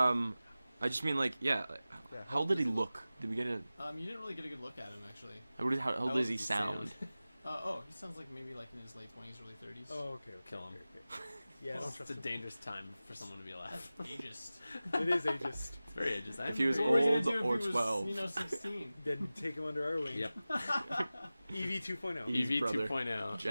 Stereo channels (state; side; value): inverted; both; correlation -0.96